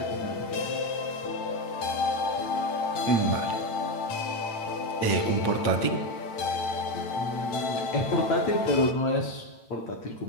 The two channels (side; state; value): right; late; 8.9 ms